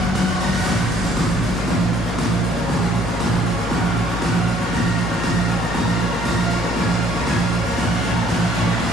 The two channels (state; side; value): normal; both; correlation 0.61